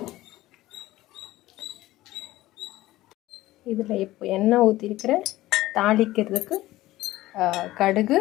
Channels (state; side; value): quieter; right; 16.7 dB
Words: இதில் இப்போ எண்ணெய் ஊற்றிருக்கிறேன். தாளிக்கிறதுக்கு கடுகு